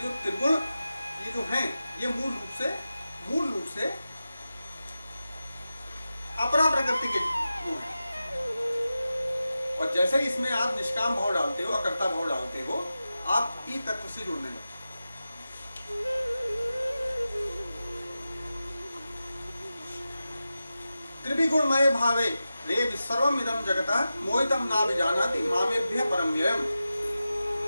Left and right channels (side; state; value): both; inverted; correlation -0.93